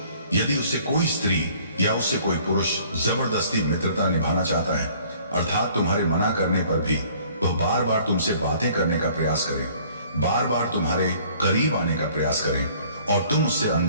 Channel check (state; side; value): inverted; both; correlation -0.55